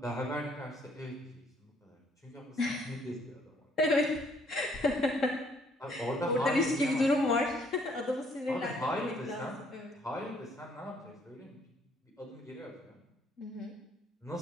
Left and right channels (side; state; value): both; normal; correlation 0.65